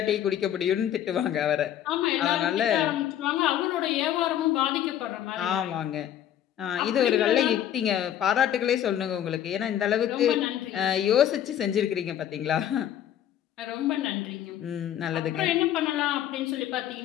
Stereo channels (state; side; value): quieter; right; 10.9 dB